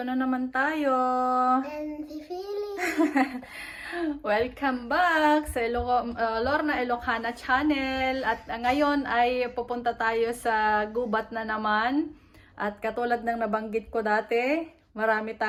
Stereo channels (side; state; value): both; identical; correlation 1.00